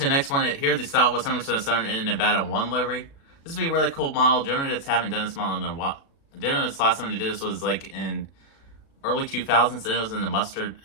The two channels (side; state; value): right; late; 36 ms